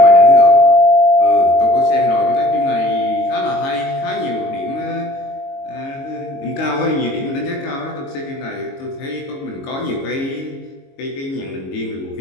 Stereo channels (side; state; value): right; late; 22 ms